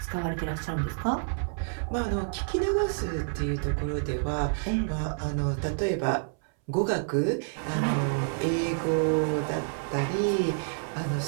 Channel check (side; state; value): left; silent; 59 dB below the other